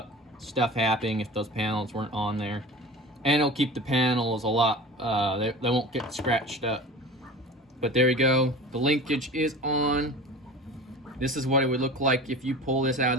stuff happening if those panels weren't on there. And it'll keep the panels a lot, they won't get scratched up. But there we go, the linkage is on. This is what it would look like if you pull this out of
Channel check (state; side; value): normal; both; correlation 0.36